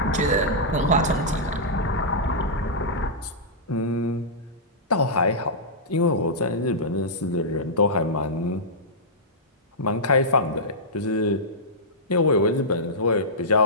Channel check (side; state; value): both; normal; correlation -0.14